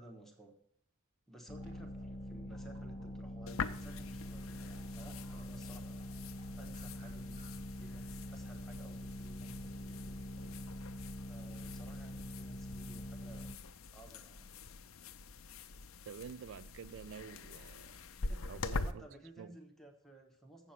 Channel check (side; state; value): both; normal; correlation 0.65